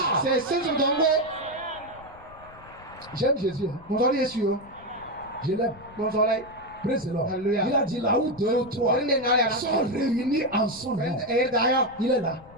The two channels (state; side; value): noise; left; rumble, 22 dB below the sound